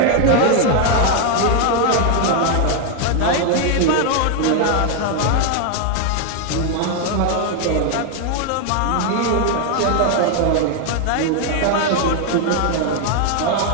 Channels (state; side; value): different; both; correlation 0.01